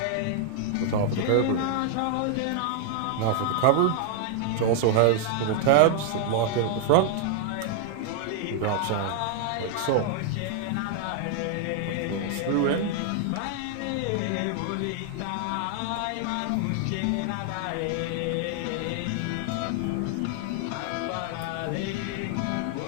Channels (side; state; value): both; different; correlation 0.00